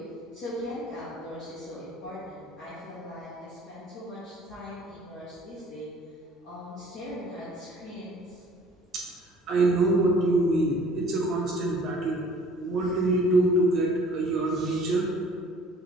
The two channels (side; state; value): both; normal; correlation 0.53